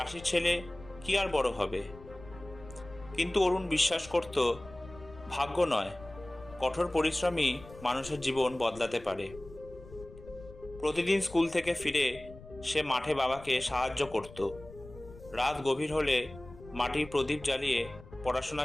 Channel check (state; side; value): noise; left; rumble, 18 dB below the sound